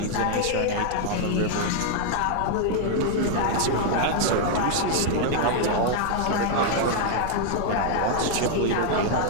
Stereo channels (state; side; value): different; both; correlation 0.00